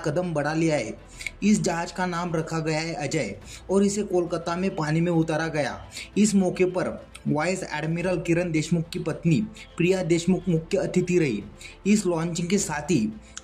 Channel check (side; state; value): both; identical; correlation 1.00